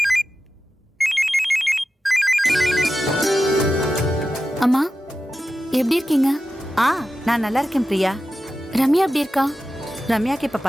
அம்மா எப்படி இருக்கீங்க? நான் நல்லா இருக்கேன் பிரியா. ரம்யா எப்படி இருக்கா? ரம்யாக்கு இப்ப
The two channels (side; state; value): both; normal; correlation 0.92